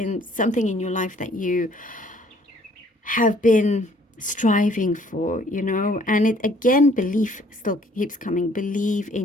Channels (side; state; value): both; normal; correlation 0.60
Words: something in your life that you have been striving for, you know. And it again, belief still keeps coming. Believe